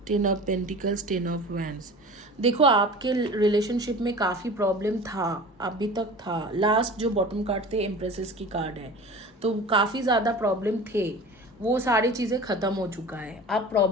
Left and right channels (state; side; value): normal; both; correlation 0.38